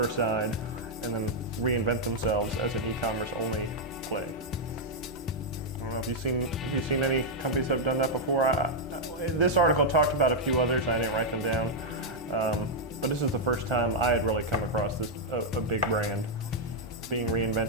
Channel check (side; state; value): both; normal; correlation -0.02